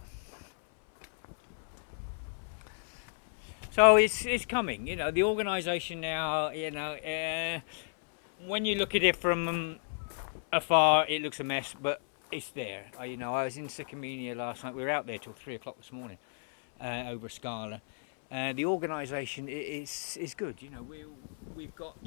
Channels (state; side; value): silent; right; 56 dB below the other